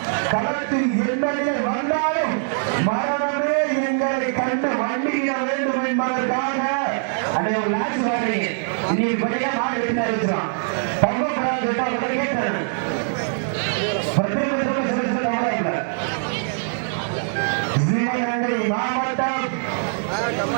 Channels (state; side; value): silent; left; digital silence